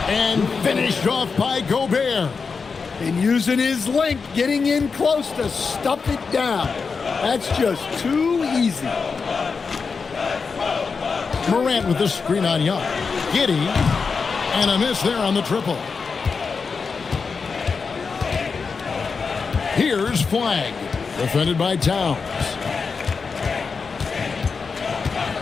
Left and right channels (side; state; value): right; quieter; 5.1 dB